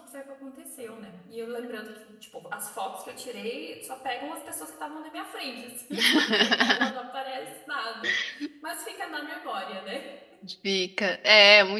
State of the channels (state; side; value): identical; both; correlation 1.00